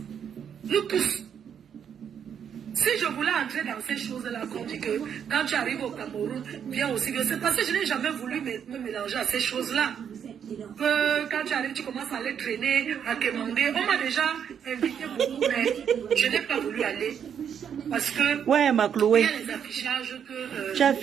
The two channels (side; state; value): left; quieter; 8.1 dB